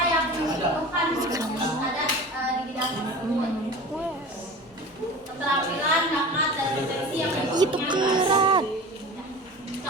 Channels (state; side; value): normal; both; correlation 0.36